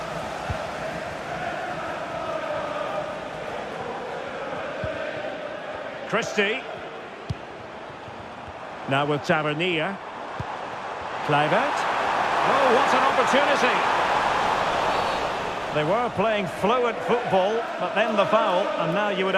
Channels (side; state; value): both; identical; correlation 1.00